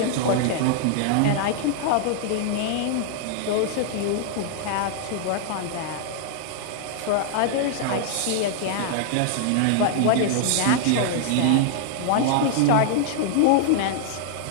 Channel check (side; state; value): both; different; correlation -0.01